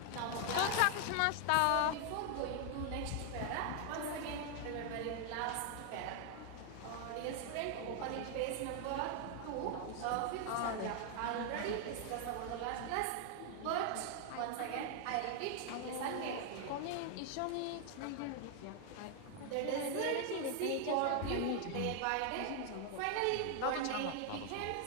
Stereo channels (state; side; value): different; both; correlation 0.00